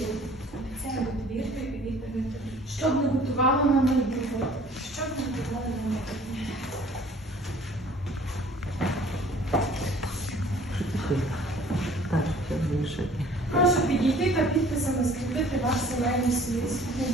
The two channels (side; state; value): both; normal; correlation 0.52